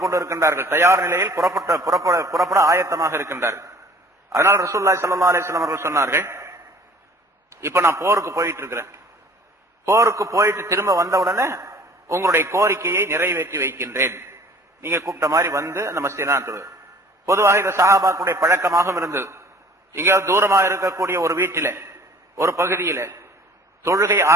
கொண்டு இருக்கின்றார்கள். தயார் நிலையில் புறப்பட ஆயத்தமாக இருக்கின்றார்கள். அதனால் ரசூலுல்லாஹி ஸல்லல்லாஹு அலைஹி வஸல்லம் அவர்கள் சொன்னார்கள், இப்ப நான் போருக்கு போயிட்டு இருக்கிறேன், போருக்கு போயிட்டு திரும்ப வந்த உடனே உங்களுடைய கோரிக்கையை நிறைவேற்றி வைக்கின்றேன், நீங்க கூப்பிட்ட மாதிரி வந்து அந்த மஸ்ஜித். பொதுவாக இந்த சஹாபாக்களுடைய பழக்கமாகவும் இருந்தது. எங்கேயாவது தூரமாக இருக்கக்கூடிய ஒரு வீட்டில ஒரு பகுதியில தொழுகை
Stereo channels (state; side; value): normal; both; correlation 0.50